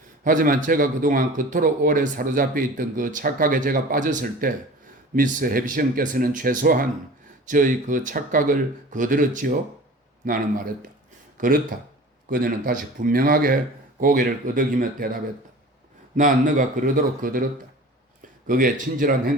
하지만 제가 그동안 그토록 오래 사로잡혀 있던 그 착각에 제가 빠졌을 때 미스 해비션께서는 최소한 저의 그 착각을 거들었지요? 나는 말했다. 그렇다. 그녀는 다시 분명하게 고개를 끄덕이며 대답했다. 난 너가 그러도록 거들었다. 그게 친절한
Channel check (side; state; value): both; normal; correlation 0.40